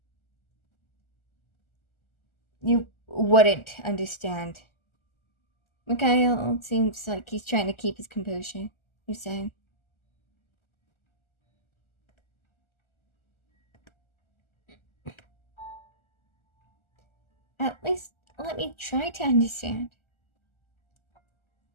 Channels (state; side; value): late; right; 1.4 ms